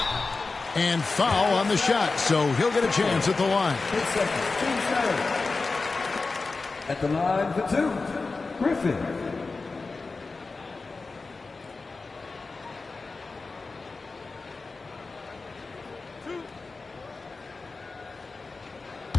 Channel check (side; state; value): right; quieter; 3.9 dB